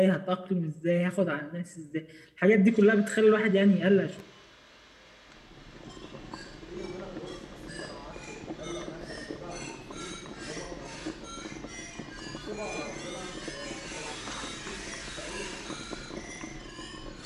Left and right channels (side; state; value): both; identical; correlation 1.00